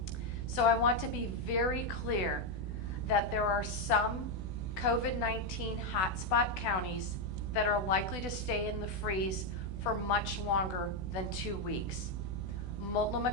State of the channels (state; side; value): late; right; 16 ms